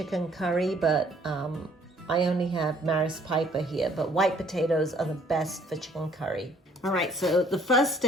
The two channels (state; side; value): normal; both; correlation 0.61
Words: curry, but I only have Maris Piper here, but white potatoes are the best for chicken curry. All right, so the first